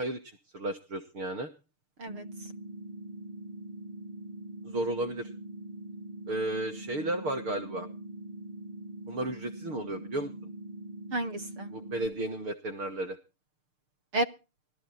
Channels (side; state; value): left; late; 6.6 ms